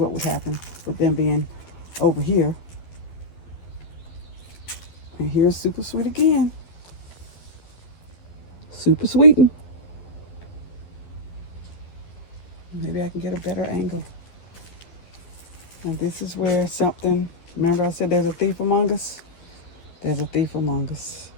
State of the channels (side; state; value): right; late; 12 ms